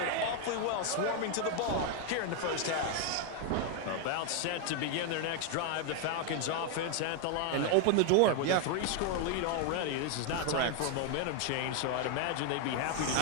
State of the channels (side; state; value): both; different; correlation 0.00